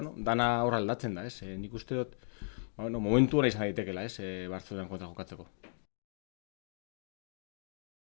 dana hor aldatzen da, ez? Nik uste dut, momentu hona izan daitekela, ez? Bartzelonan kontra jokatzeko.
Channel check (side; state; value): right; silent; digital silence